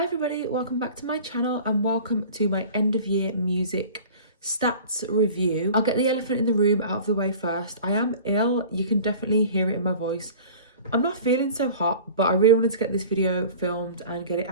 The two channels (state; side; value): inverted; both; correlation -0.42